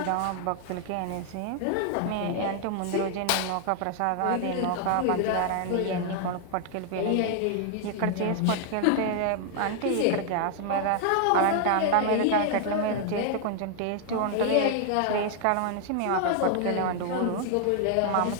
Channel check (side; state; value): both; different; correlation 0.00